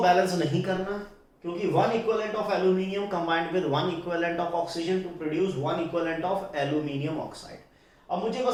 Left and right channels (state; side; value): identical; both; correlation 1.00